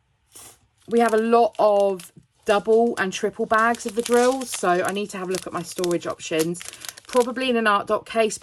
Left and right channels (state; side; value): identical; both; correlation 1.00